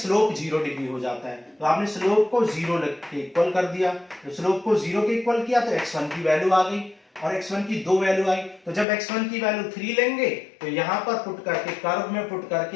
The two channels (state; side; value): drops out; right; at 8.8 s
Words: 0 डिग्री हो जाता है। तो आपने स्लोप को 0 के इक्वल कर दिया, तो स्लोप को 0 के इक्वल किया तो x1 की वैल्यू आ गई और x1 की 2 वैल्यू आई। तो जब x1 की वैल्यू 3 लेंगे तो यहां पर पुट करके कर्व में पुट